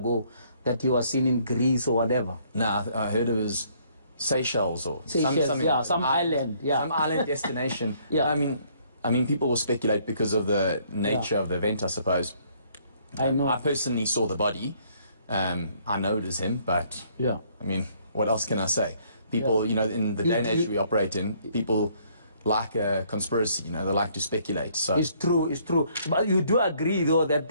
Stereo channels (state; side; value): inverted; both; correlation -0.65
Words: that he was seen in Greece or whatever. No, I heard it was Seychelles or some island. Yeah, some island destination. Yeah. I mean, people will speculate because of the nature of the event, I suppose. I know. I personally saw the body. I know it is him, but yeah. I mean, what else can I say? People, you know, in the day and age we operate in, people like a conspiracy, you know, they like to speculate. So it's true, it's true. But you do agree, though, that